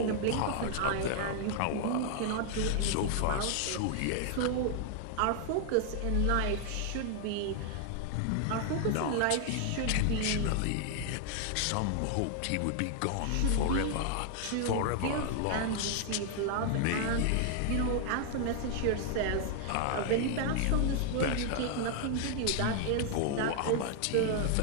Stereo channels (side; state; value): both; different; correlation 0.00